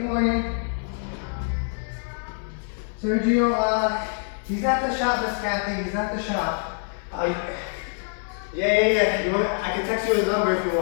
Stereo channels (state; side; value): silent; right; 62 dB below the other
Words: morning. Sergio, he's at the shop, Miss Kathy, he's at the shop. Yeah. You want me? I can text you his number if you